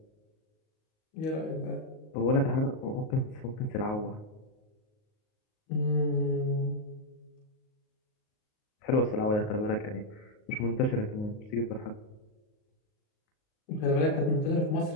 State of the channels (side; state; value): right; late; 38 ms